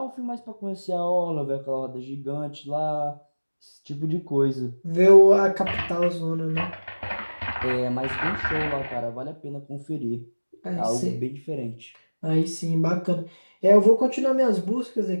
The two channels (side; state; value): both; inverted; correlation -1.00